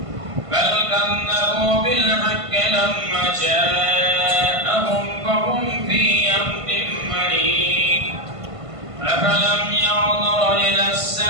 بل كذبوا بالحق لما جاءهم فهم في أمر مريض أفلم ينظروا إلى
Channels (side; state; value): left; late; 1.5 ms